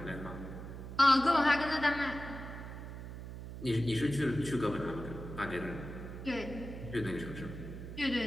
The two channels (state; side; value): noise; right; hum, 10 dB below the sound